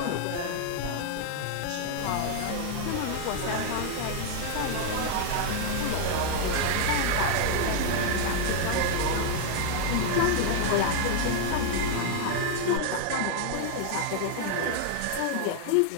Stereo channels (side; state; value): both; different; correlation 0.00